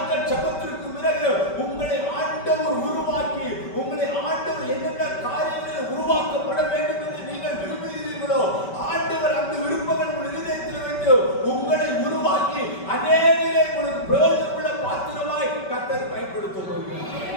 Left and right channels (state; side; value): late; right; 5.2 ms